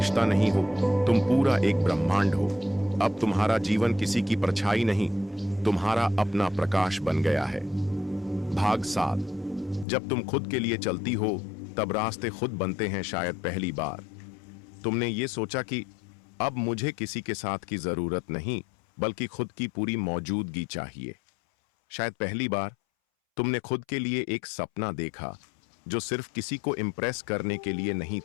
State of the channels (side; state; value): right; drops out; at 9.9 s